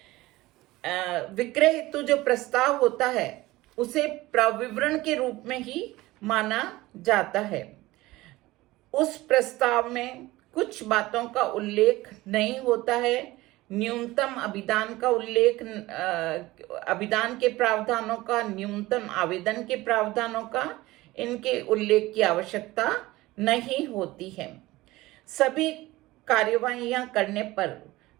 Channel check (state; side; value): quieter; left; 18.7 dB